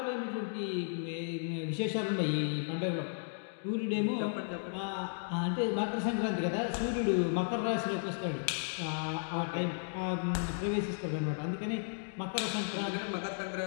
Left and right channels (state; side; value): silent; right; digital silence